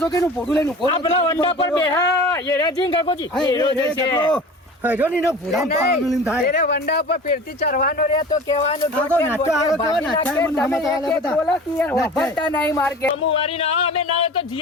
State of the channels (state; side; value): normal; both; correlation 0.38